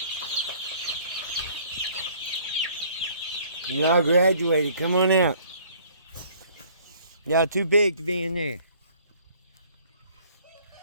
Y'all graduated. Come on out. Y'all too big to be in there.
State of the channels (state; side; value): inverted; both; correlation -0.57